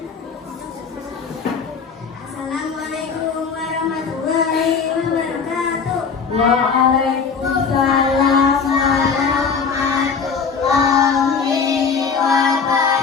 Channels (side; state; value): right; quieter; 5.7 dB